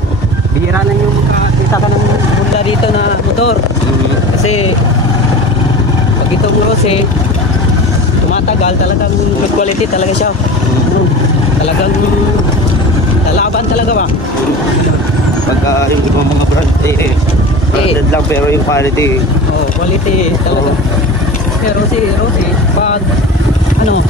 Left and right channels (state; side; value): normal; both; correlation 0.34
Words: bihira na yung makakita ka ng bunda dito na motor. Kasi, pag itong Rossi, tumatagal, talagang good quality talaga siya. Talagang lalaban talaga ba? Pagka yung ibang mga brand branded lang pero yung quality quality talaga. Pero si Rossi pag